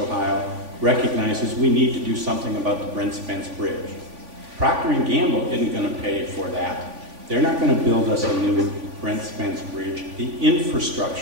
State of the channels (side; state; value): left; late; 3.5 ms